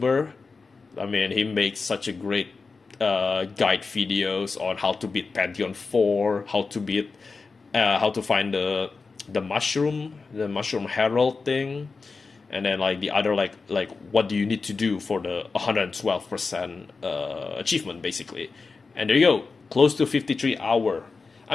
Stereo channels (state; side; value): quieter; right; 4.4 dB